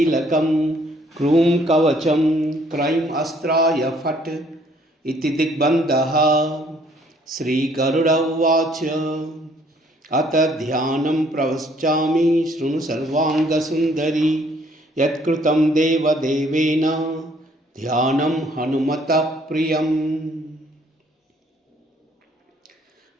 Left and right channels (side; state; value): both; normal; correlation 0.63